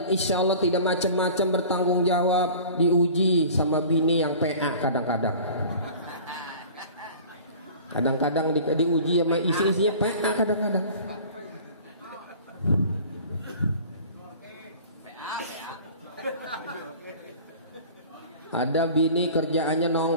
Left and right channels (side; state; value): both; inverted; correlation -0.43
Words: insya Allah tidak macam-macam, bertanggung jawab, diuji sama bini yang PA kadang-kadang. Kadang-kadang diuji sama isi-isinya PA kadang-kadang. Ada bini kerjaannya